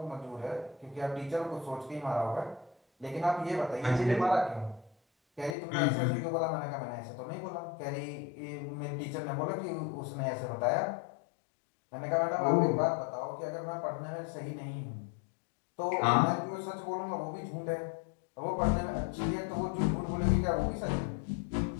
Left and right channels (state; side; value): drops out; right; at 5.6 s